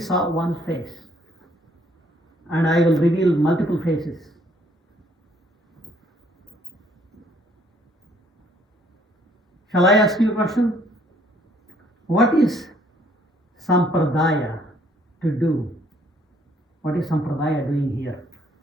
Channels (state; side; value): normal; both; correlation 0.64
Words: one face. And I will reveal multiple faces. Shall I ask you a question? What is Sampradaya to do? What is Sampradaya doing here?